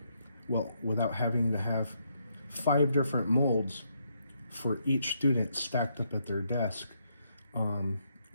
well, without having to have 5 different molds for each student stacked up at their desk,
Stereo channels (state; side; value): inverted; both; correlation -0.76